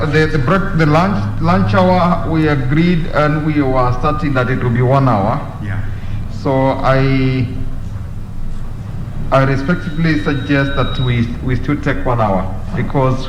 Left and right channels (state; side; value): identical; both; correlation 1.00